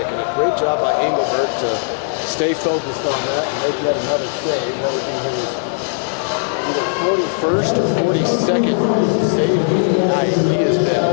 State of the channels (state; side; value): silent; right; digital silence